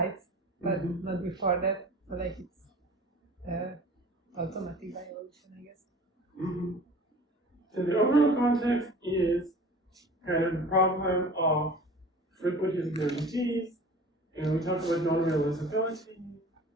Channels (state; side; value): normal; both; correlation 0.42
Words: but not before that. So like it's automatic by evolution, I guess. mhm. So the overall context is kind of the problem of frequentist guarantees, and we talked about non-realizability,